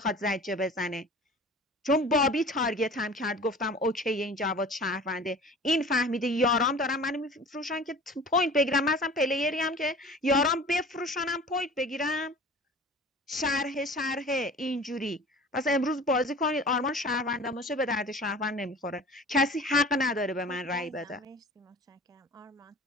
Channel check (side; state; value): both; normal; correlation 0.42